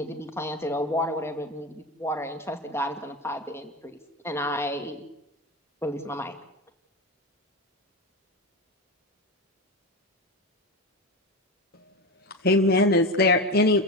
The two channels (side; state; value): both; normal; correlation 0.20